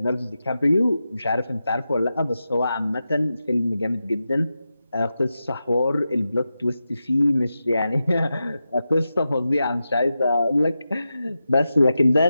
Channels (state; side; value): inverted; both; correlation -0.91